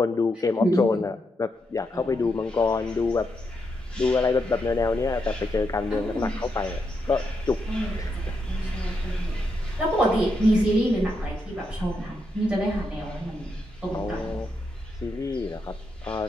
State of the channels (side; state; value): both; normal; correlation 0.82